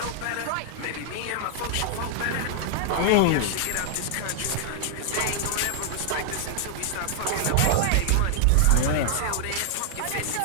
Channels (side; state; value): both; different; correlation 0.00